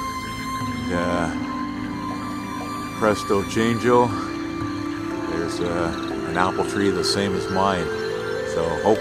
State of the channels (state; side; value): identical; both; correlation 1.00